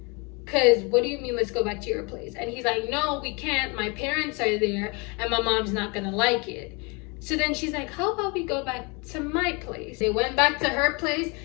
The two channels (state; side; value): quieter; right; 30.0 dB